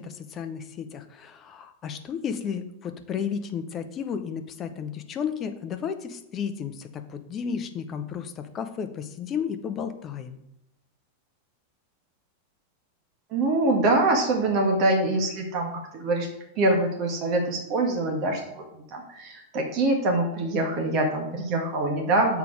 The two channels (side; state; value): both; normal; correlation -0.02